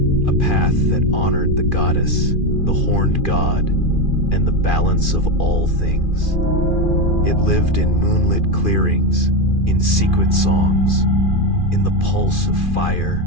a path that honored the goddess, the horned god, and the balance of all things. It lived in moonlit clearings, in secret songs, in the pulse of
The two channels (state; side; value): late; right; 2.4 ms